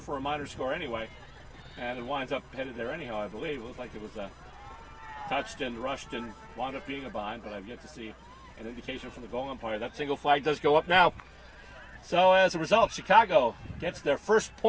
for a minor score anyway. And it winds up headed there anyhow, I believe. It looked like it was touched and rushed and wound up being a bind, but I've yet to see an indication from the goal umpire. That single flag does go up now. So as a result, Chicago gets their first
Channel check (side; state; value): both; identical; correlation 1.00